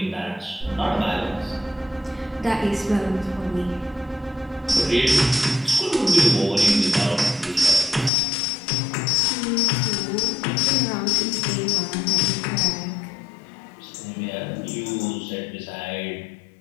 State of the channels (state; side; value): drops out; right; at 8.1 s